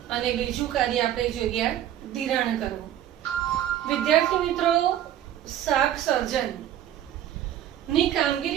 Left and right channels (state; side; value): quieter; left; 11.6 dB